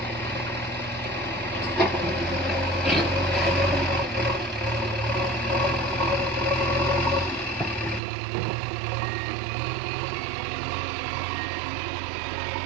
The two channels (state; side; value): drops out; left; at 8.0 s